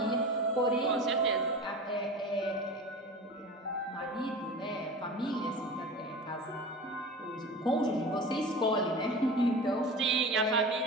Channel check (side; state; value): both; normal; correlation 0.33